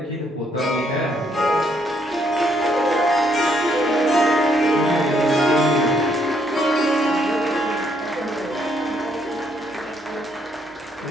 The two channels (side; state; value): both; normal; correlation 0.71